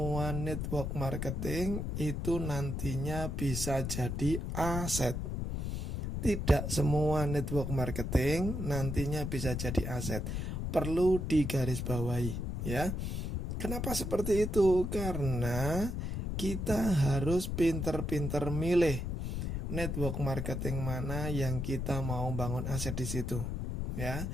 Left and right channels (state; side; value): noise; left; rumble, 2 dB below the sound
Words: network marketing itu nantinya bisa jadi aset. Tidak semua network marketing nantinya bisa jadi aset. Perlu digarisbawahi, ya. Kenapa seperti itu? Karena kita harus pinter-pinter milih network marketing mana yang kita mau bangun aset di situ, ya.